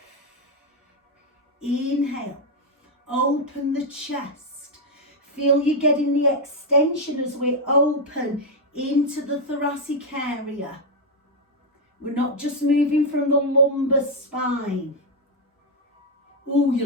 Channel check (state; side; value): normal; both; correlation 0.02